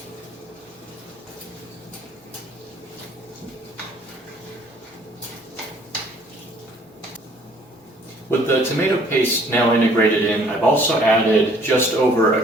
With the tomato paste now integrated in, I've also added just over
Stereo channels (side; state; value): both; normal; correlation 0.58